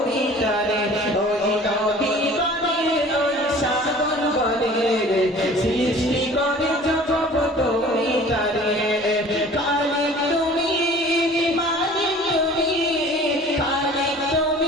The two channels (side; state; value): both; normal; correlation 0.47